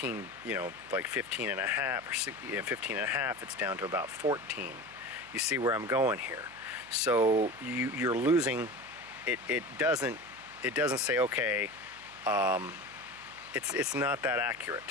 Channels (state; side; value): noise; right; hum, 23 dB below the sound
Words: like 15 and a half, or 15 and a half, it's down to about 14. You see where I'm going here. So you're losing. It doesn't say, okay, it's not that